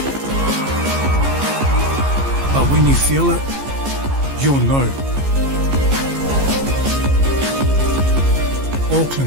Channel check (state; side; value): late; left; 15 ms